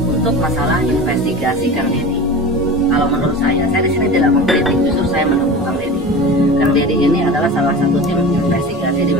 untuk masalah investigasi Kang Deddy, kalau menurut saya di sini tidak mengkritik, justru saya mendukung Kang Deddy. Kang Deddy ini adalah salah satu tim investigasi di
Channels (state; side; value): normal; both; correlation 0.33